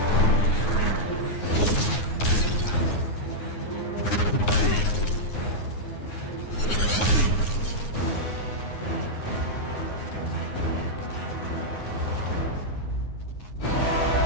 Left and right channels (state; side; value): late; right; 9.6 ms